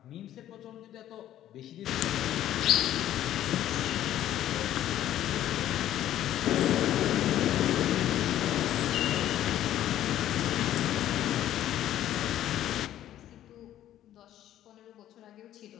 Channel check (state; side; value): quieter; right; 12.3 dB